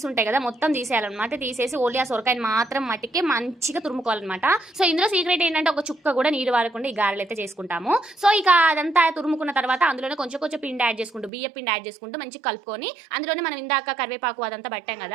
ఉంటాయి కదా, మొత్తం తీసేయాలన్నమాట. తీసేసి ఓన్లీ ఆ సొరకాయని మాత్రం మట్టికి మంచిగా తురుముకోవాలన్నమాట. సో ఇందులో సీక్రెట్ ఏంటంటే ఒక చుక్క కూడా నీరు వారకుండా ఈ గారెలు అయితే చేసుకుంటాము. సో ఇక అదంతా తురుముకున్న తర్వాత అందులోనే కొంచెం కొంచెం పిండి యాడ్ చేసుకుంటూ, బియ్య పిండి యాడ్ చేసుకుంటూ మంచిగా కలుపుకొని అందులోనే మనం ఇందాక కరివేపాకు అదంతా పట్టాం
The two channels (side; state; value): left; drops out; at 11.3 s